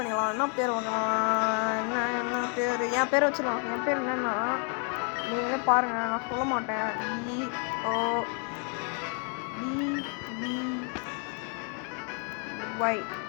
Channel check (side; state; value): right; quieter; 40.0 dB